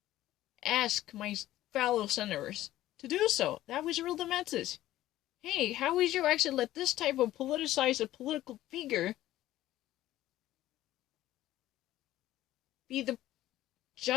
ask my fellow senators to do so. That was really the message. Hey, how would you actually let this type of politicized a political figure be the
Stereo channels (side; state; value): right; quieter; 14.6 dB